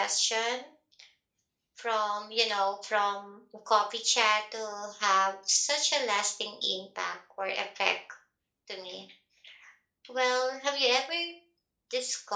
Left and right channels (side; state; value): both; identical; correlation 1.00